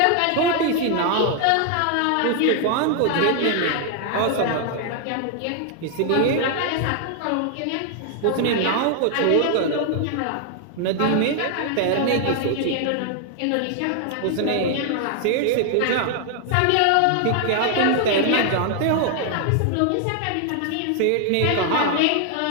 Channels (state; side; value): different; both; correlation 0.00